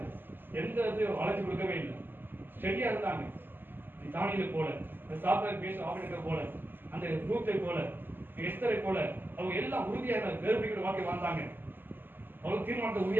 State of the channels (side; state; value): left; late; 0.094 ms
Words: எந்த வளர்ச்சி கொடுக்கவே இல்லை. ஸ்டெடியா இருந்தாங்க. தானியலை போல, சாப்பிட பேச ஆபரேட்டரை போல, அந்த ரூத்தை போல, எஸ்தரை போல அவங்க எல்லாம் உறுதியாக வேறுபடுகிற வாழ்க்கை வாழ்ந்தாங்க. அவங்க தீர்மானத்தை